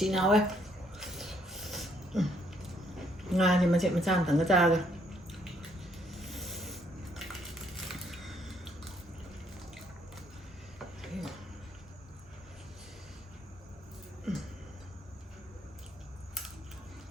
ꯍꯥꯎꯋꯦ ꯉꯥꯁꯦ ꯃꯆꯦꯠ ꯃꯆꯥ ꯑꯃꯇꯪꯒ ꯆꯥꯔꯒ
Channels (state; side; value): normal; both; correlation 0.69